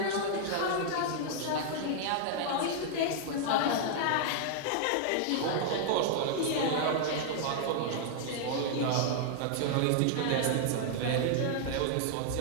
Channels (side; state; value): both; different; correlation -0.01